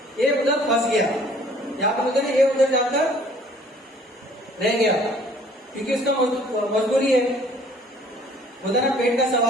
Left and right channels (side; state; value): both; normal; correlation 0.56